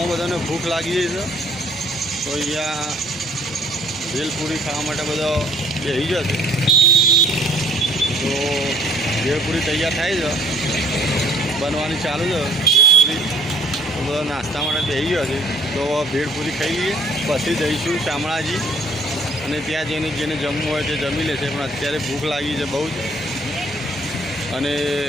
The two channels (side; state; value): both; normal; correlation 0.60